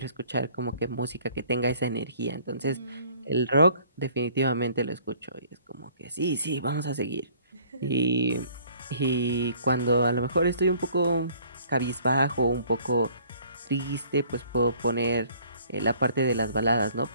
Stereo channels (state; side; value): inverted; both; correlation -0.57